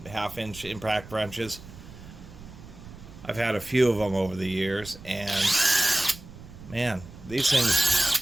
half-inch impact wrenches. I've had a few of them over the years, and man, these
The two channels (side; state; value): right; noise; rumble, 17 dB below the sound